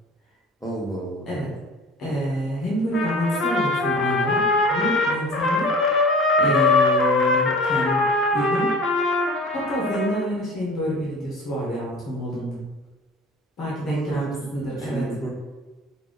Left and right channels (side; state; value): both; normal; correlation 0.41